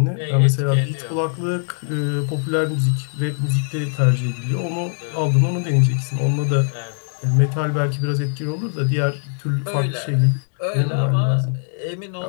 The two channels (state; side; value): silent; right; 63 dB below the other